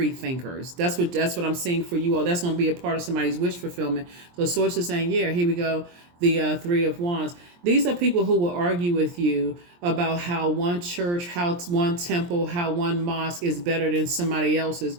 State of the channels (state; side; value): late; left; 23 ms